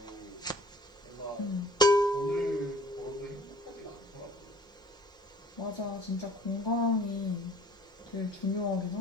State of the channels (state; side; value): normal; both; correlation 0.51